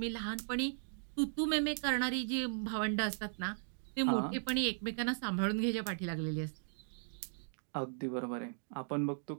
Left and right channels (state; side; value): silent; left; digital silence